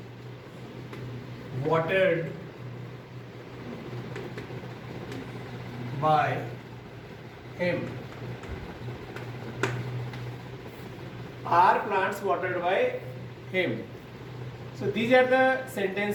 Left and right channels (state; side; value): identical; both; correlation 1.00